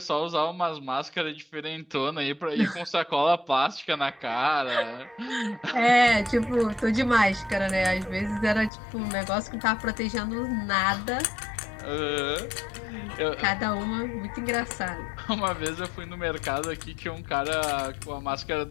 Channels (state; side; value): drops out; right; at 8.7 s